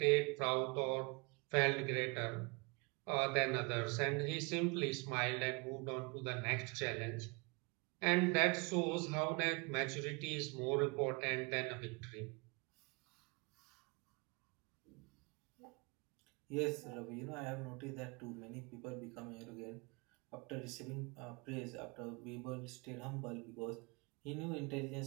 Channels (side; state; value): left; quieter; 29.9 dB